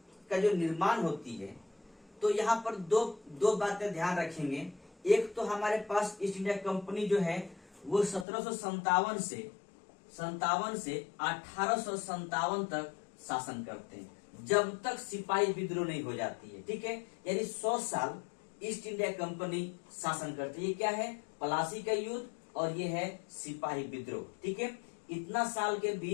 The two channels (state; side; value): drops out; right; at 8.2 s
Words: का जो निर्माण होती है, तो यहाँ पर दो बातें ध्यान रखेंगे। एक तो हमारे पास ईस्ट इंडिया कंपनी जो है वो 1757 57 से 1857 तक शासन करते हैं, जब तक सिपाही विद्रोह नहीं हो जाती है। ठीक है, यानी 100 साल ईस्ट इंडिया कंपनी शासन करती है। ये क्या है? प्लासी का युद्ध और ये है सिपाही विद्रोह। ठीक है, इतना साल के